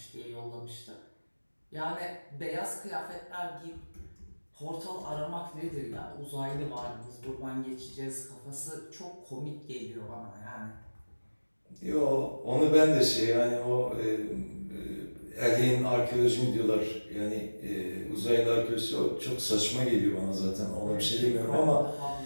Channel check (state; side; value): inverted; both; correlation -1.00